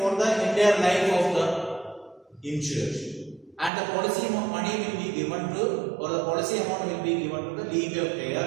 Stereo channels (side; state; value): left; drops out; at 3.7 s